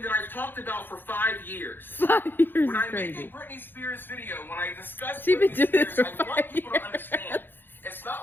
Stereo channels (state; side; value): late; right; 0.098 ms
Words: that I've talked about for 5 years. 5 years when I crazy. make a Britney Spears video, when I discuss Britney Spears, I want people to understand. It's not